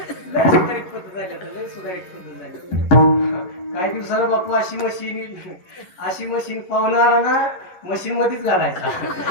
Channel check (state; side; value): late; right; 11 ms